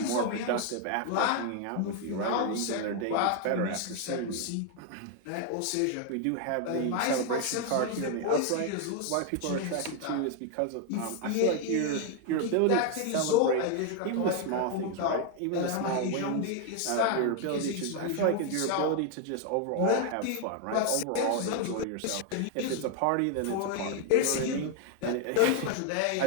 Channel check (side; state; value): both; different; correlation 0.01